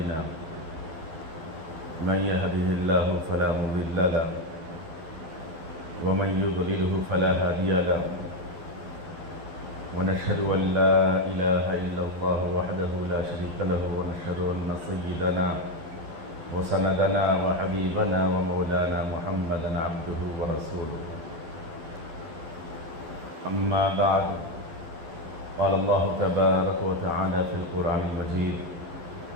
من يهده الله فلا مضل له ومن يضلله فلا هادي له ونشهد أن لا إله إلا الله وحده لا شريك له ونشهد أن سيدنا وسندنا وحبيبنا ومولانا محمدا عبده ورسوله أما بعد قال الله تبارك وتعالى في القرآن المجيد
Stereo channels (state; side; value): late; left; 11 ms